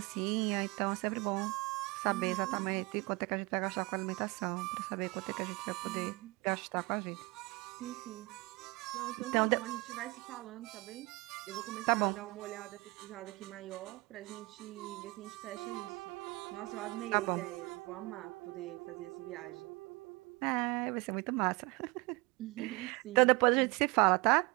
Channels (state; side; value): quieter; left; 24.9 dB